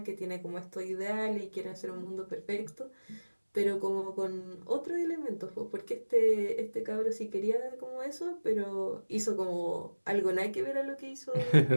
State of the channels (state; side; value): inverted; both; correlation -1.00